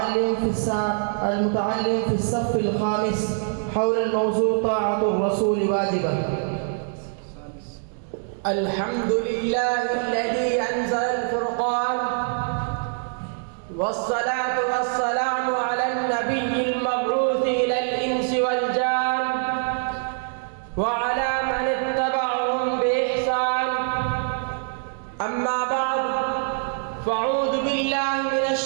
في الصف الخامس حول الموضوع طاعة الرسول واجبة. الحمد لله الذي أنزل الفرقان، والصلاة والسلام على النبي المبعوث إلى الإنس والجان وعلى من اتبعهم بإحسان. أما بعد، فأعوذ بالله من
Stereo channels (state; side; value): silent; left; 57 dB below the other